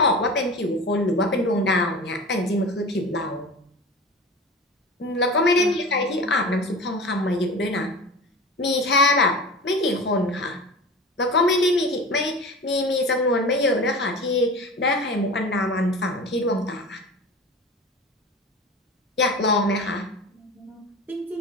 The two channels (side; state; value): both; normal; correlation 0.33